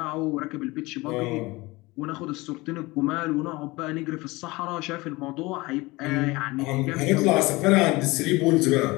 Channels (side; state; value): right; quieter; 22.1 dB